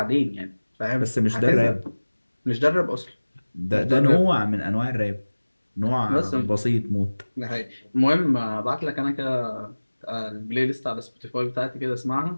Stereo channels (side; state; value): both; inverted; correlation -1.00